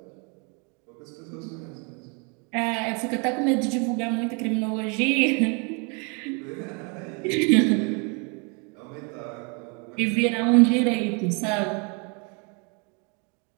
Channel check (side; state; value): left; quieter; 34.1 dB